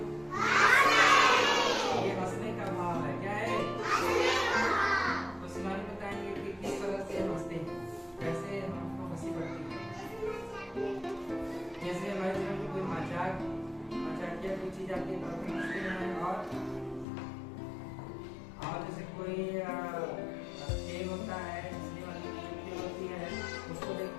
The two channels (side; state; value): right; drops out; at 17.1 s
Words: ये हंसने का भाव है, क्या है? तो शिवानी बताएंगे कि किस तरह से हंसते हैं, कैसे हमको हंसी पड़ती है। जैसे हमारे जीवन में कोई मजाकिया कोई चीज आती है तो हम हंसते हैं, और जैसे कोई खेल होता है, हंसने वाली खेल होती है, उसको